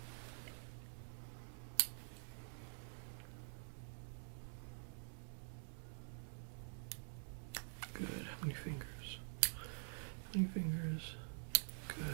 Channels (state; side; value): silent; left; digital silence